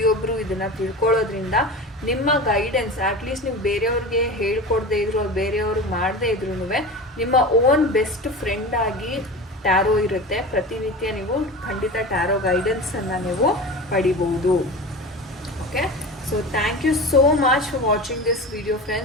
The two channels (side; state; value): both; normal; correlation 0.31